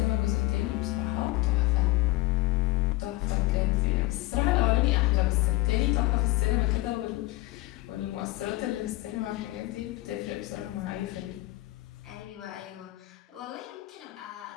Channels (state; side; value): quieter; right; 19.8 dB